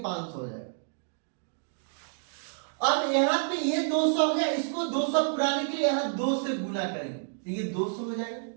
500 हो जाएगा। अब यहां पे ये 200 हो गया, इसको 200 पुराने के लिए यहां 2 से गुना करेंगे तो ये 200 हो जाएगा,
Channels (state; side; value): silent; left; digital silence